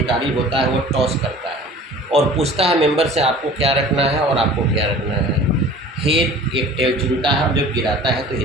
होता है वो टॉस करता है और पूछता है मेंबर से आपको क्या रखना है और आपको क्या रखना है। हेड एक टेल चुनता है और जब गिराता है तो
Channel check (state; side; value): normal; both; correlation 0.45